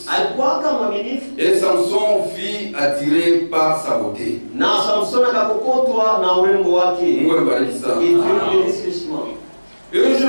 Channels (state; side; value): inverted; both; correlation -1.00